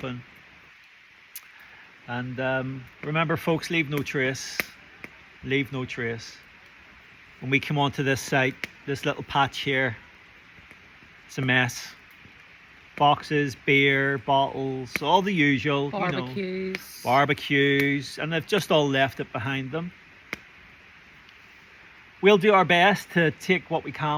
And remember, folks, leave no trace. Leave no trace. When we come onto this site, this little patch here, it's a mess. Boxes, beer, bottles, all the usual. Barbecues. You know, barbecues, and they've just all left it behind them. We'll do our best to take what we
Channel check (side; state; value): both; identical; correlation 1.00